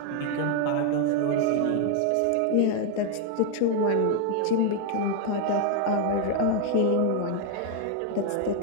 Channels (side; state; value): both; different; correlation 0.00